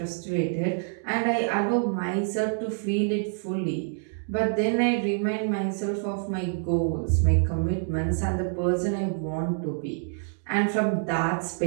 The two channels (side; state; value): left; silent; digital silence